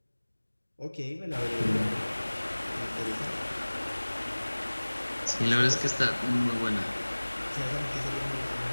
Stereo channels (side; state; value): both; inverted; correlation -1.00